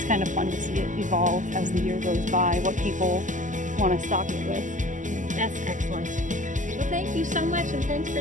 kind of fun to see it evolve as the year goes by, what people want to stock it with. That's excellent. thank you so much, and thanks for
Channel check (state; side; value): late; left; 0.37 ms